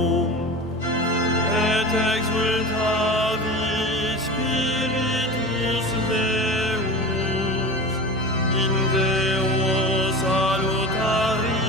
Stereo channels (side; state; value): both; normal; correlation 0.31